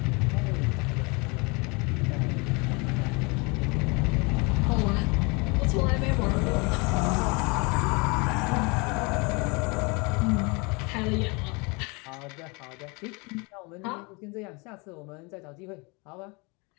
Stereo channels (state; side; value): quieter; right; 29.2 dB